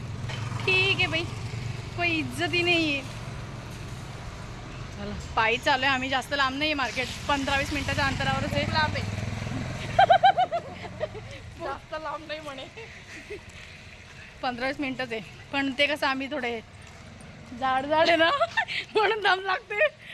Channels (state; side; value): identical; both; correlation 1.00